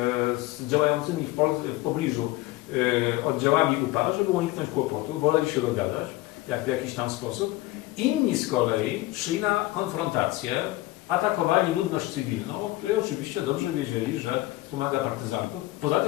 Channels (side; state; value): right; quieter; 18.3 dB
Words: z działającymi w pobliżu oddziałami UPA, żeby uniknąć kłopotu, woleli się dogadać w jakiś tam sposób. Inni z kolei szli na konfrontację, atakowali ludność cywilną, o której oczywiście dobrze wiedzieli, że pomaga partyzantów. Poza